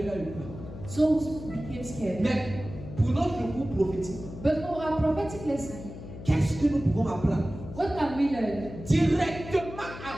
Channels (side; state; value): left; noise; hum, 12 dB below the sound